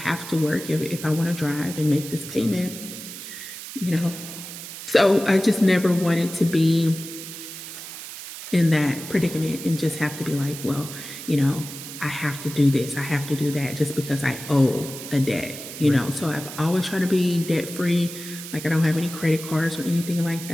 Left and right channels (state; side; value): noise; right; hiss, 11 dB below the sound